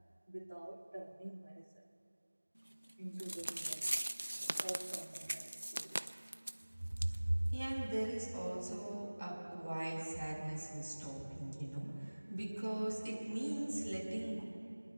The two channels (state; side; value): inverted; both; correlation -1.00